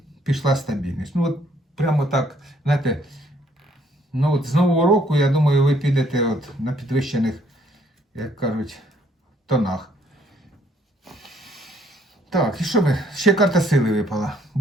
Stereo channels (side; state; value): both; normal; correlation 0.65